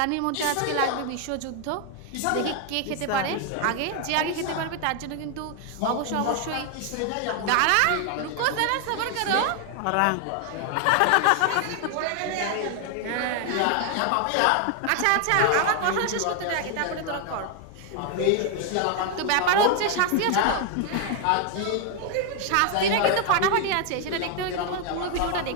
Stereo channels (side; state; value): both; different; correlation 0.00